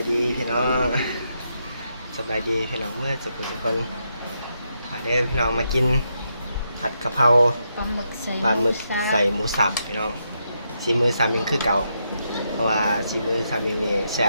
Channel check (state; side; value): inverted; both; correlation -0.81